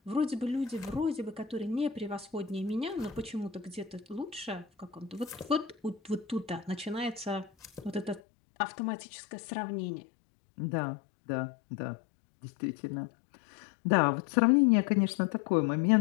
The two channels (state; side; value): drops out; right; at 8.2 s